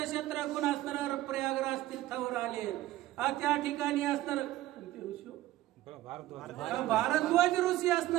शत्रुघ्न असणार प्रयागराज तीर्थावर आले। त्या ठिकाणी असणार भारद्वाज ऋषी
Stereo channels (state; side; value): quieter; left; 15.7 dB